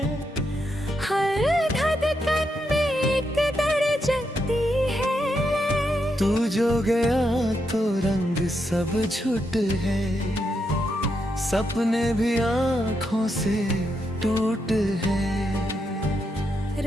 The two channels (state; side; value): normal; both; correlation 0.82